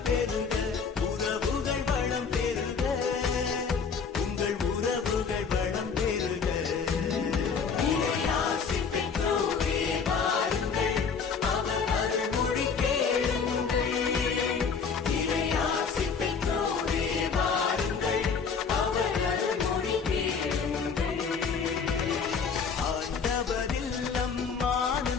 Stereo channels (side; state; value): right; quieter; 5.7 dB